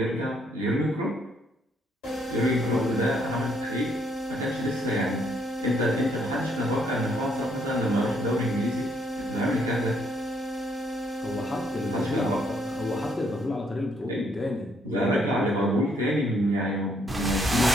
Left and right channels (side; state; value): both; normal; correlation 0.70